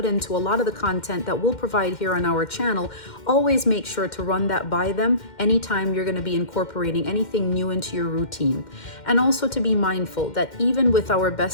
into a lot of the content that we'll provide here on our channel, always make sure to run that by them anytime you're going to be incorporating anything new into your routine. And also to be mindful that even with our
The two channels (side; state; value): right; late; 2.1 ms